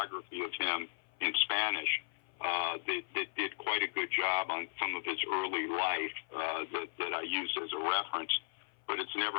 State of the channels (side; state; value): right; silent; 54 dB below the other